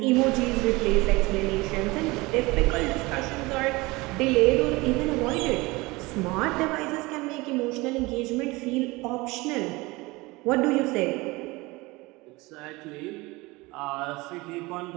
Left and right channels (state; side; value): quieter; left; 22.7 dB